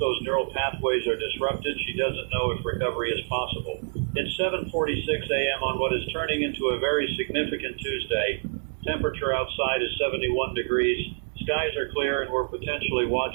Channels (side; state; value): left; silent; digital silence